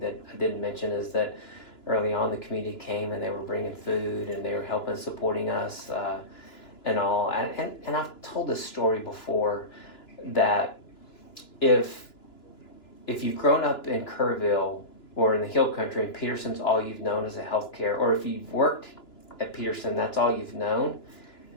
I didn't mention is that early on the community came and they were bringing food and they were helping, supporting us and all. And I've told this story before that if you've grown up in Kerrville or in the Hill Country and Peterson's all you've known as a healthcare, or if you've worked at Peterson, that's all you've known,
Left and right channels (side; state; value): right; late; 2.9 ms